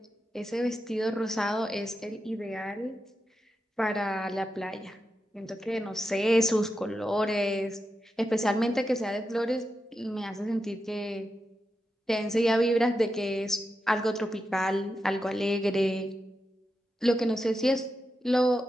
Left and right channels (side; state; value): both; normal; correlation 0.88